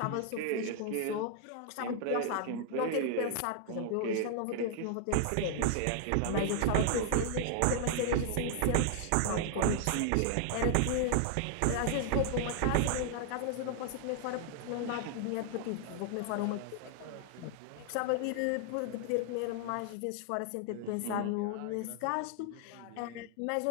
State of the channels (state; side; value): different; both; correlation 0.00